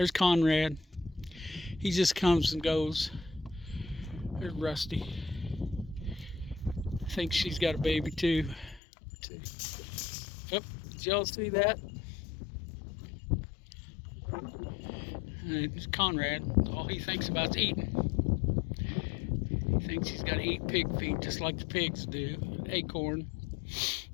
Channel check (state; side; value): drops out; right; at 8.8 s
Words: Conrad. He just comes and goes. There's Rusty. I think she's got a baby too. Yep, did y'all see that? And it's Conrad. All he thinks about is eating. He thinks he's got to eat pig feet just like the pigs do. Acorn.